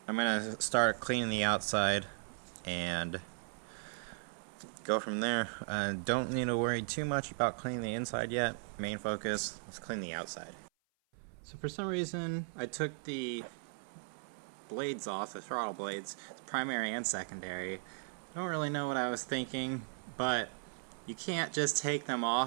I'm going to start cleaning the outside and go from there. Don't need to worry too much about cleaning the inside yet. Main focus, let's clean the outside. So for some reason, I took the blades off, the throttle blades, primary and secondary. I don't really know what I was thinking, but you can't just take them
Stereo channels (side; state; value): left; silent; 53 dB below the other